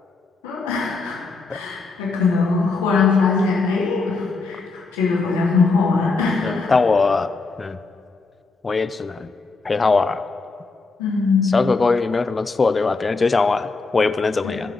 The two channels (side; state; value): right; quieter; 4.0 dB